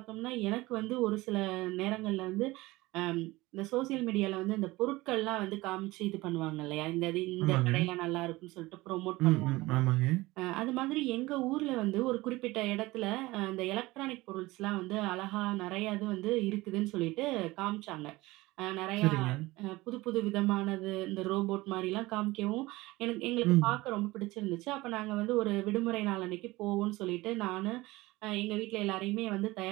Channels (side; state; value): left; quieter; 20.2 dB